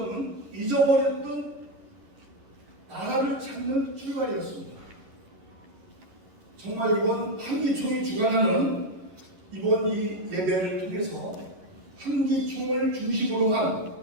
잊어버렸던 나라를 찾는 출발이었습니다. 정말 이번 한기총이 주관하는 이번 이 예배를 통해서 한기총을 중심으로 한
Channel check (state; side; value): late; left; 11 ms